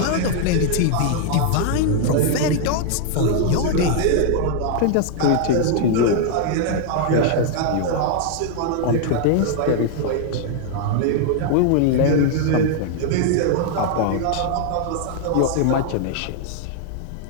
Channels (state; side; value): different; both; correlation 0.00